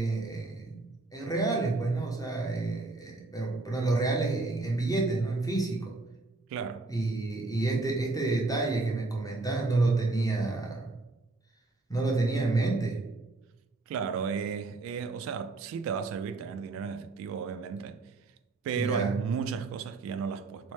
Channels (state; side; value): quieter; left; 3.2 dB